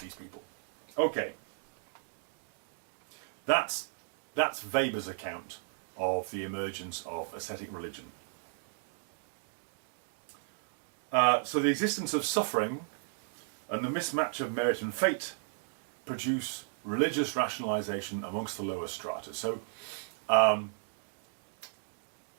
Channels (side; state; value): left; silent; digital silence